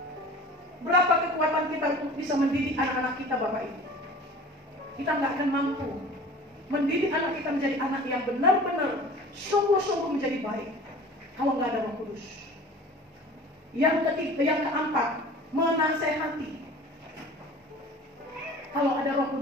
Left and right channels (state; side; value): normal; both; correlation 0.42